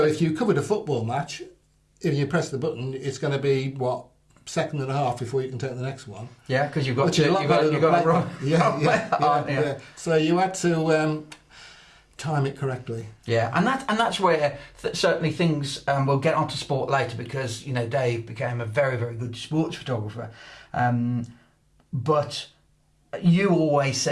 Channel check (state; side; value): identical; both; correlation 1.00